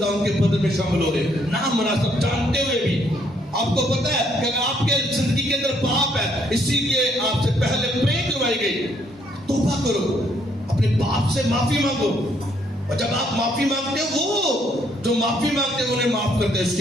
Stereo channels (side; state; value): both; normal; correlation 0.69